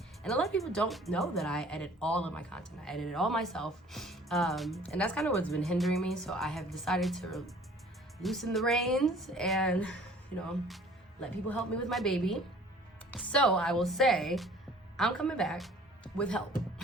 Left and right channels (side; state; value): both; normal; correlation 0.51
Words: a lot of people don't know that I edit all of my content. I edit it all myself. And that's kind of what's been hindering me. So I have decided to loosen the reins and, let people help me with my baby. So I will say, I'm coming back with help.